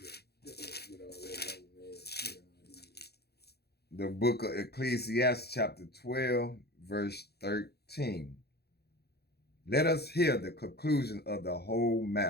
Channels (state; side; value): late; right; 0.47 ms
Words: The book of Ecclesiastes chapter 12, verse 13. Let us hear the conclusion of the whole